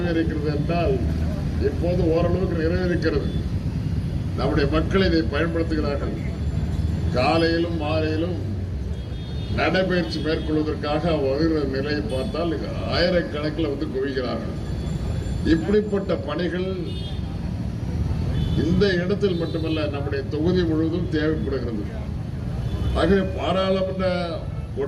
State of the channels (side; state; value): both; identical; correlation 1.00